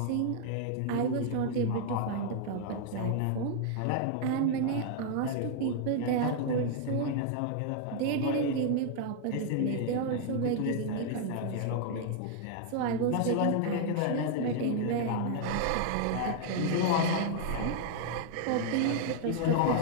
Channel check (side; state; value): both; different; correlation 0.00